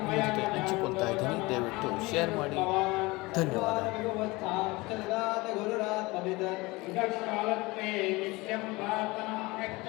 ಜೊತೆ ಹಂಚಿಕೊಳ್ತಾ ಇದ್ದೀನಿ. ದಯವಿಟ್ಟು ಶೇರ್ ಮಾಡಿ. ಧನ್ಯವಾದ.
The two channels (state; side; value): quieter; right; 22.7 dB